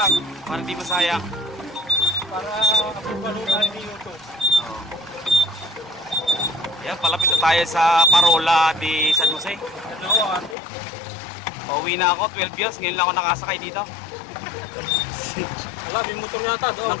Para hindi masayang. para panood tayo ni YouTube. Ayan, palapit na tayo sa Parola de San Jose. Ano, ate? Pauwi na ako, 12 years. Ngayon lang ako nakasakay dito. Wala, may motor yata doon.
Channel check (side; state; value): right; drops out; at 10.6 s